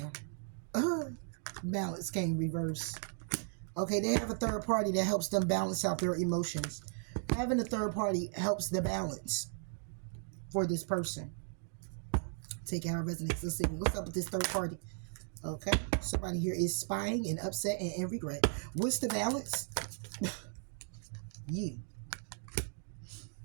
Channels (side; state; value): left; silent; 54 dB below the other